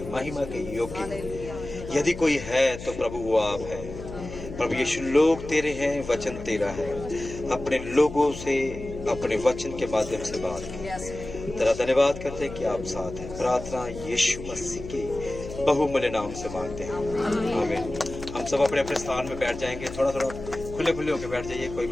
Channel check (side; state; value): left; noise; hum, 11 dB below the sound